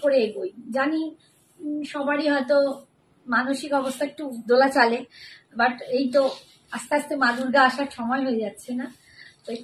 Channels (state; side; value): identical; both; correlation 1.00